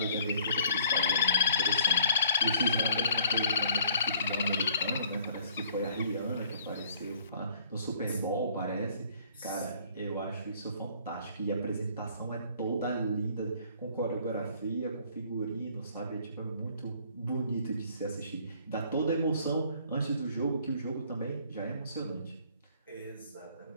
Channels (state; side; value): inverted; both; correlation -0.59